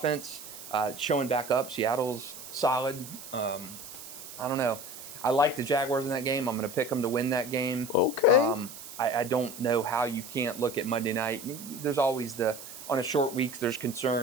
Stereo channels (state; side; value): noise; right; hiss, 13 dB below the sound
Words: showing back up. Seattle's solid. I don't know. I like the Jaguars in that game. I'm going to pick them to win that game. Okay. I don't know how you can't look at Monday night. There's always on a short week, there's